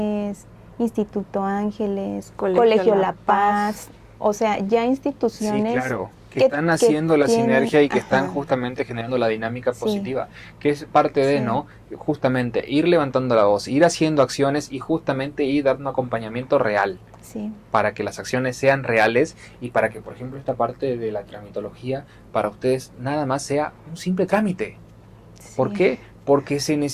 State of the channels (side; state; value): both; identical; correlation 1.00